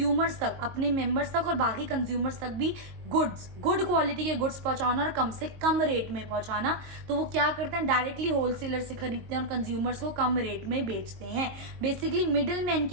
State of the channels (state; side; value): late; left; 22 ms